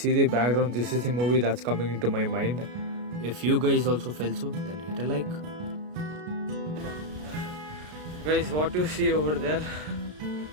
the background, this is the movie that's coming into my mind. If you guys also felt so, then hit a like. Guys, what you see over there,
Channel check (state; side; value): late; left; 33 ms